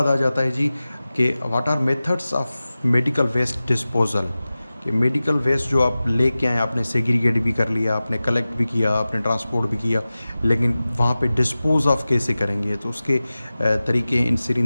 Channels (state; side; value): inverted; both; correlation -0.96